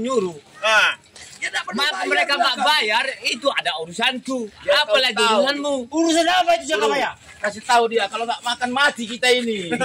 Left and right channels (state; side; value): identical; both; correlation 1.00